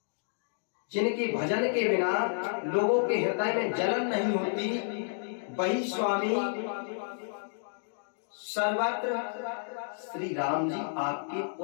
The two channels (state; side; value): silent; right; digital silence